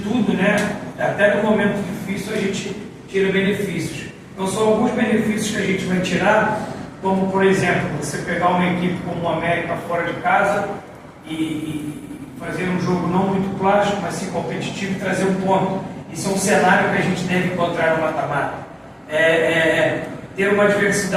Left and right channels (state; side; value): identical; both; correlation 1.00